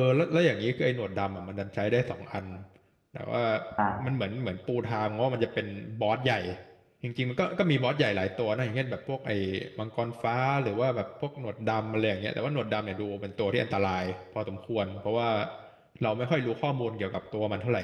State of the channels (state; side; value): identical; both; correlation 1.00